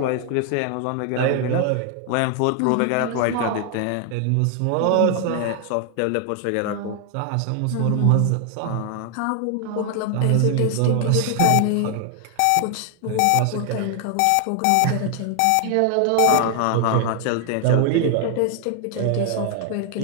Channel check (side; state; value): both; different; correlation 0.00